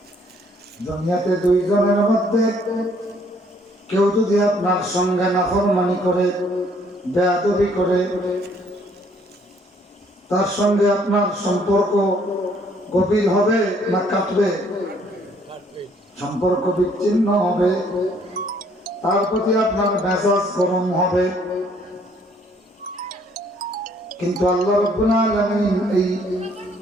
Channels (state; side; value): normal; both; correlation 0.63